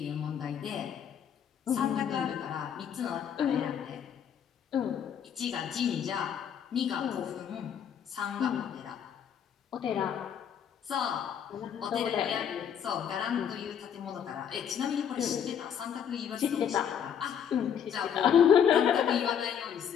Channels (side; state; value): right; quieter; 8.4 dB